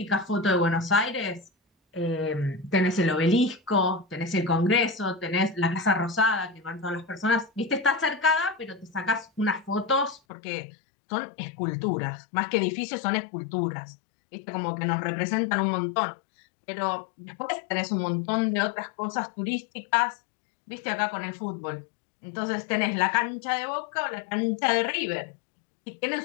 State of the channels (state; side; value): drops out; right; at 10.2 s